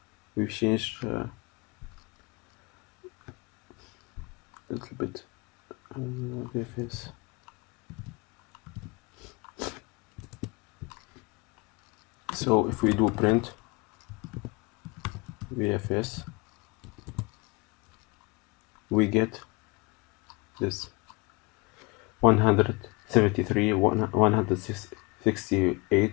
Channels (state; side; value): quieter; right; 26.3 dB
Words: We've changed a little bit VFS. So if we do print VFS, we get this 173,